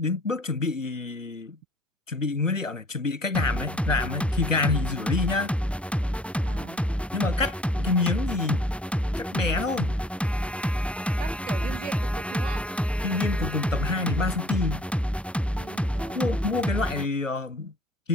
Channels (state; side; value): normal; both; correlation 0.55